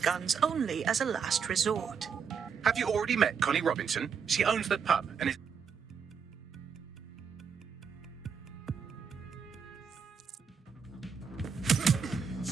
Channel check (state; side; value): quieter; left; 6.5 dB